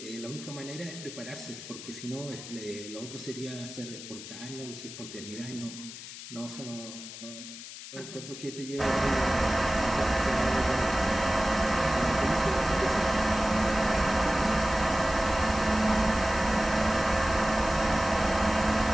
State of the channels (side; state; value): left; noise; hiss, 12 dB below the sound